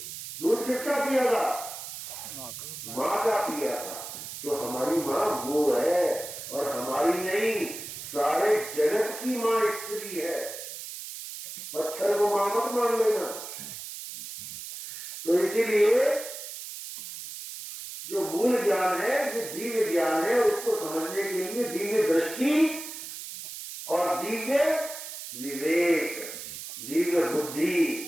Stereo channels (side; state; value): right; noise; hiss, 10 dB below the sound